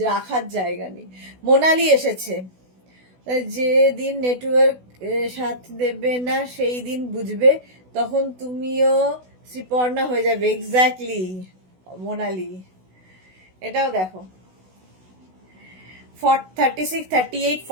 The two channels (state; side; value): late; left; 16 ms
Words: জায়গা নেই। মোনালি এসেছে, যে দিন নেটওয়ার্ক সাথ দেবে না সেই দিন বুঝবে, তখন তুমিও শ্রীপর্ণা হয়ে যাবে। এক্স্যাক্টলি মোনালি। এটাও দেখো 36, 38,